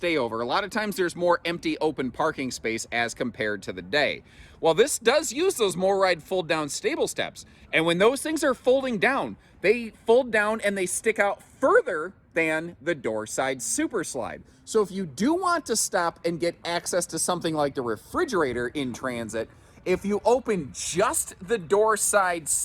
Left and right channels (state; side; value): identical; both; correlation 1.00